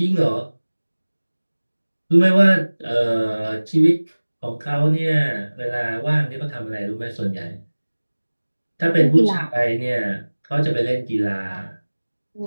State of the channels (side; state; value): both; inverted; correlation -1.00